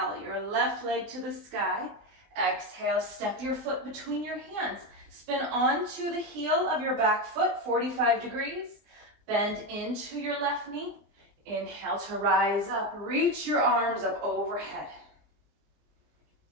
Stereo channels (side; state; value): left; late; 20 ms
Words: your left leg to the sky. Exhale, step your foot between your hands. Spin onto the heel of your back foot, 45 degrees. Bend into your left knee. Inhale to rise up. Reach your arms up overhead.